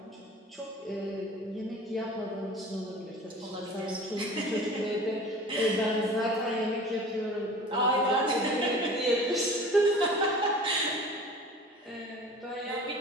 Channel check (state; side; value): normal; both; correlation 0.42